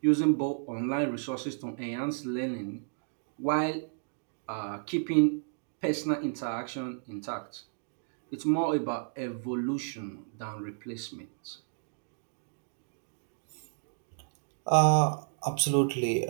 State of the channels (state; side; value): silent; left; digital silence